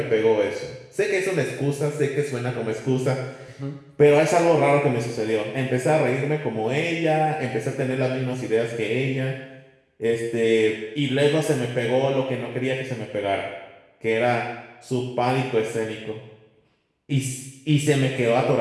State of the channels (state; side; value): identical; both; correlation 1.00